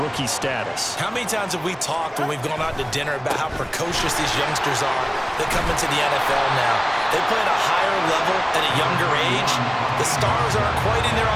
status. How many times have we talked when we've gone out to dinner about how precocious these youngsters are that come into the NFL now? They play at a higher level at a younger age. The stars aren't quite in their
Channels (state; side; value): identical; both; correlation 1.00